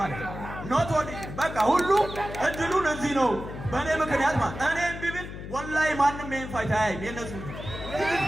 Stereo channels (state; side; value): noise; left; hum, 10 dB below the sound